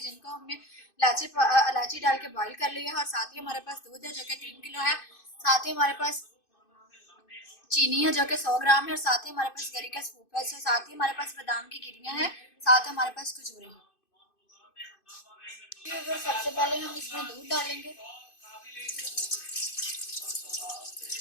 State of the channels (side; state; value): right; late; 2.5 ms